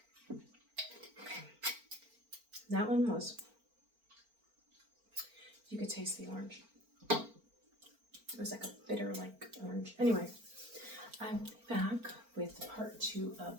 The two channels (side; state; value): left; late; 4.4 ms